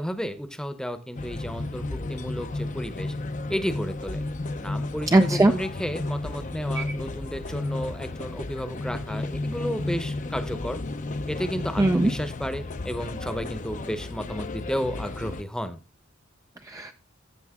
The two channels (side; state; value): both; normal; correlation 0.87